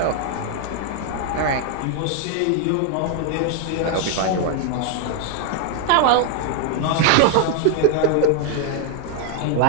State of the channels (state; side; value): different; both; correlation 0.00